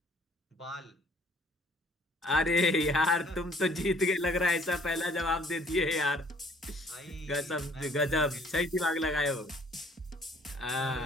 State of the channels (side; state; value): both; normal; correlation 0.59